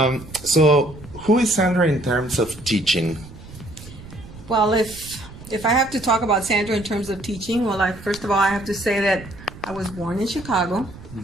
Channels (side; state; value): right; noise; rumble, 17 dB below the sound